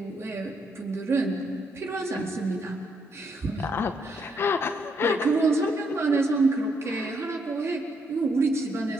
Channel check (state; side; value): normal; both; correlation 0.75